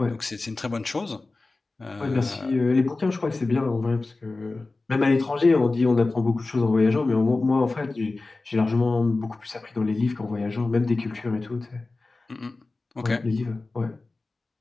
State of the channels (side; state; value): right; quieter; 3.4 dB